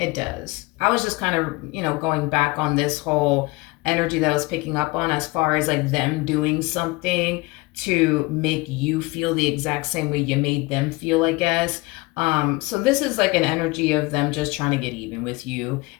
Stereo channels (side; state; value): right; quieter; 23.6 dB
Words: does. I was just kind of, going back on this whole energy that I was picking up on, as far as like them doing something to make you feel the exact same way you made them feel, I guess. So this is like an energy of them just trying to get even with you.